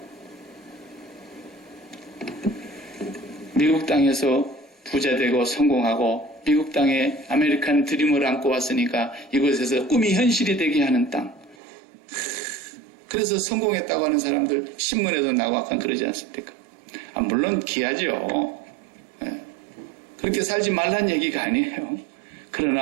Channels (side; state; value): left; drops out; at 11.6 s